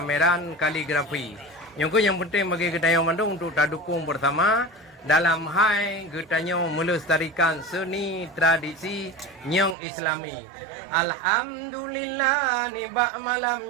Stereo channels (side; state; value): left; drops out; at 9.8 s